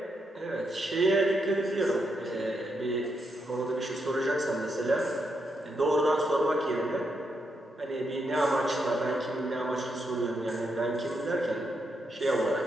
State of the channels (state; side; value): normal; both; correlation 0.81